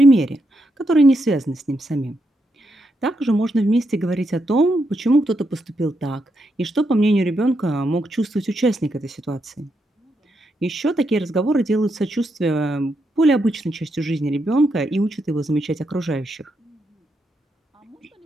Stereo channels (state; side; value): normal; both; correlation 0.81